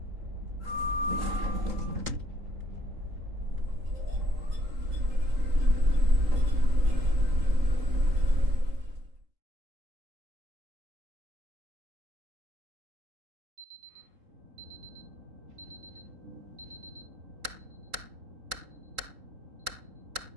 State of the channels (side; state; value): left; late; 3.8 ms